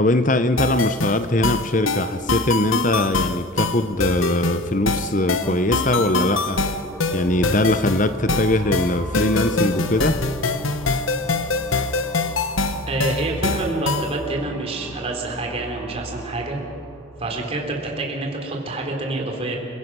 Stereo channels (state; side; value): normal; both; correlation 0.37